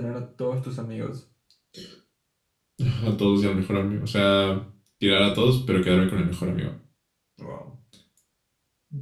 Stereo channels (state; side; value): identical; both; correlation 1.00